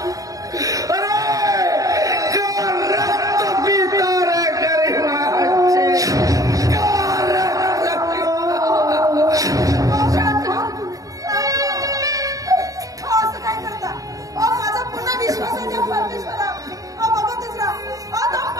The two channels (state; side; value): late; left; 0.17 ms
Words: अरे का रक्त पिता रे गरिबांचे, का रक्त असं काय करता. माझा पुन्हा विश्वास आहे त्या परमेश्वरा. बघतच राहा, तो